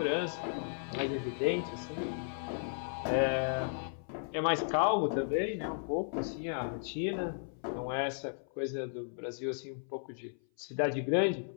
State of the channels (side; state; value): right; silent; 54 dB below the other